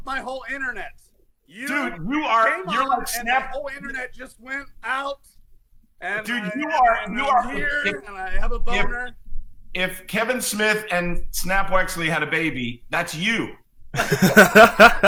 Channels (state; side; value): identical; both; correlation 1.00